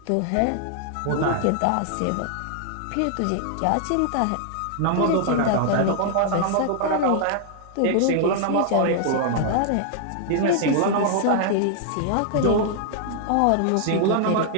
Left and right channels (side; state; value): both; different; correlation 0.00